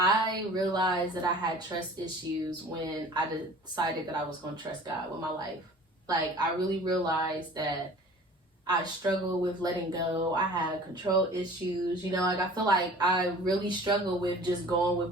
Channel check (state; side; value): normal; both; correlation 0.45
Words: realized that I had trust issues when I decided that I was going to trust God with my life. Like, I really realized that I struggle with letting go. I had control issues. Like, I feel like I really struggle with just going